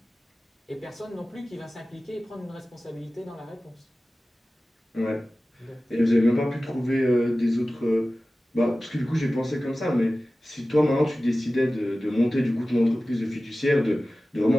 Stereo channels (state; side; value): normal; both; correlation 0.96